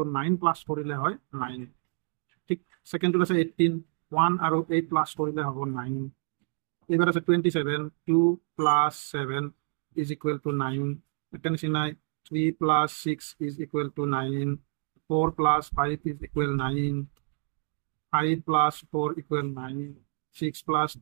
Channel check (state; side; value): silent; left; 59 dB below the other